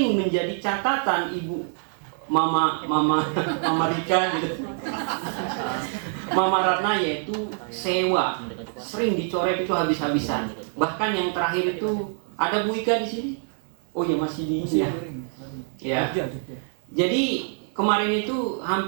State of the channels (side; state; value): left; silent; 59 dB below the other